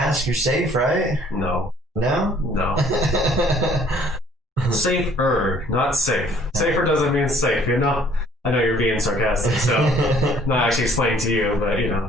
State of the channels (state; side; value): normal; both; correlation 0.58